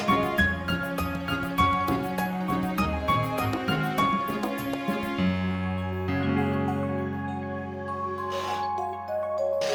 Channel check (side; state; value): both; identical; correlation 1.00